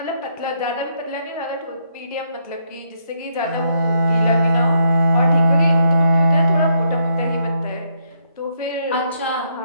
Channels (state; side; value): inverted; both; correlation -0.75